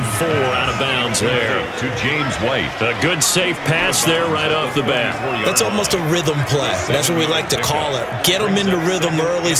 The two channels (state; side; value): identical; both; correlation 1.00